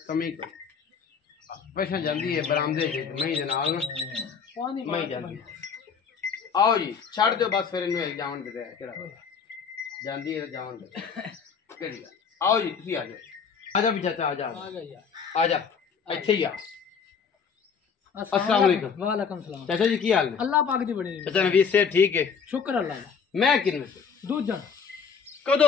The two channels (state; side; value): quieter; right; 6.2 dB